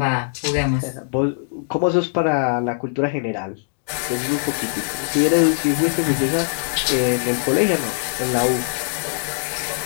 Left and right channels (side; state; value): right; silent; digital silence